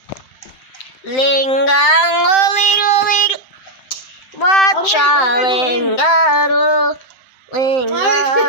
Linggango, ling. Watcha, linggago.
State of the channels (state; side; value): late; right; 7.7 ms